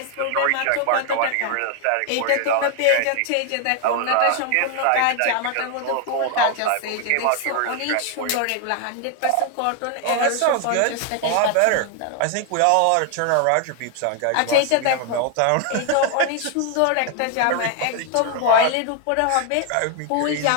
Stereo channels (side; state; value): both; different; correlation 0.00